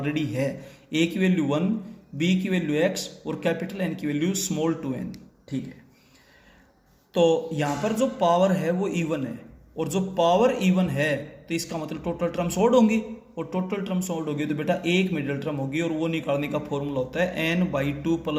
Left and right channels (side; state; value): both; identical; correlation 1.00